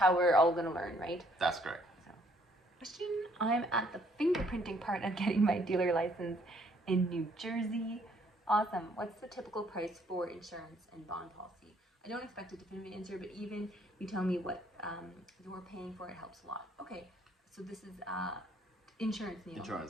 we're all going to learn, right? That's correct. So, question: I'm at the fingerprinting part of getting my dealer license in New Jersey. Awesome. What's the typical price for insurance and bond policy? I don't expect a definitive answer, but even you tell me what you're paying for, it helps a lot. Okay, so this is insurance, Neil.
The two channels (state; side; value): normal; both; correlation 0.65